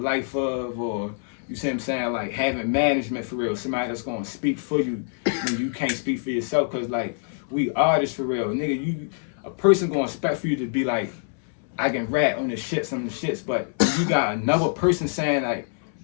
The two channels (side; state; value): right; silent; 62 dB below the other